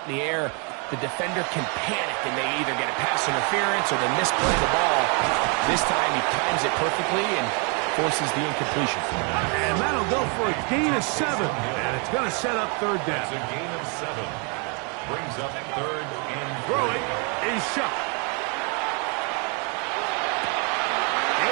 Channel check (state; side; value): quieter; left; 35.3 dB